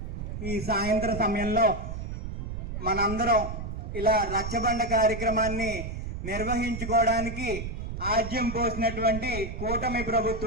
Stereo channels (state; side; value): noise; right; rumble, 6 dB below the sound